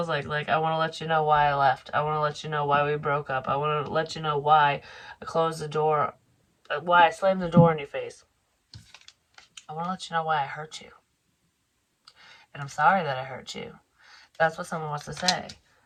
like. Like, I want to let you know why I left. I want to let you know why we broke up. I want to let you know why I closed the door, why I slammed the door in your face. I want to let you know why I hurt you. And I'm sorry that I hurt you. That's what someone wants to say.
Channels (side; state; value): both; identical; correlation 1.00